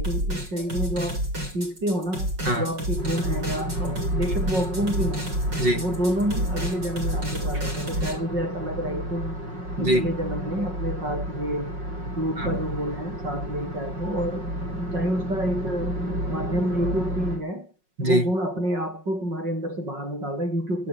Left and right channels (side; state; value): left; late; 5.4 ms